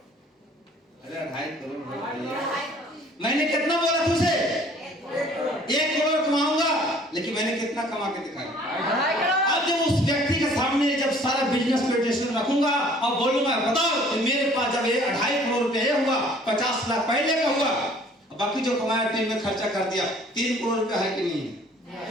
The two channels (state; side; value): normal; both; correlation 0.54